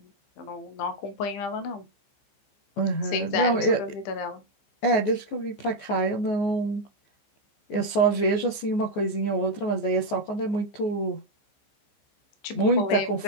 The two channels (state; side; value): late; right; 14 ms